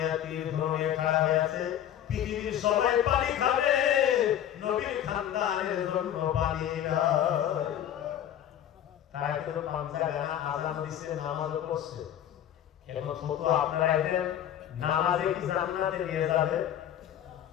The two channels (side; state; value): right; quieter; 10.8 dB